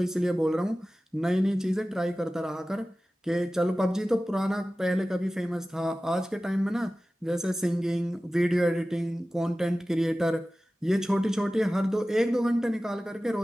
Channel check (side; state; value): both; normal; correlation 0.96